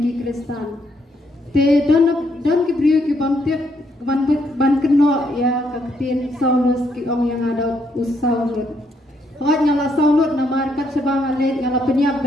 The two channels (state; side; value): normal; both; correlation 0.74